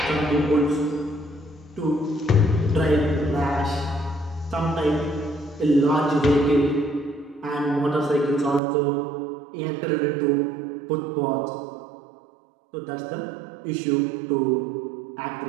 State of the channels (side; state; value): left; drops out; at 8.6 s